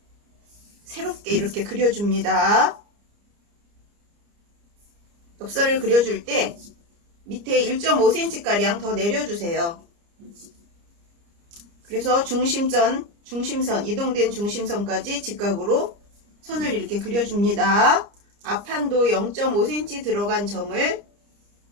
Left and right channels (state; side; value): late; left; 29 ms